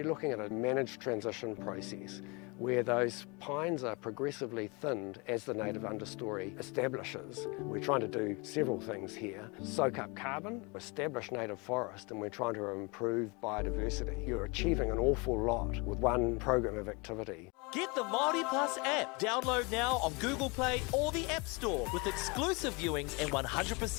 looking at a managed transition process where those pines are progressively thinned as the native understory establishes. We're trying to do several things here. Soak up carbon, establish native forest, and we're trying to improve biodiversity. You're achieving an awful lot with one program of activity. Get the Māori Plus app. Download now on Google Play or the App Store with exclusive viewings and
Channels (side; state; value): right; quieter; 28.8 dB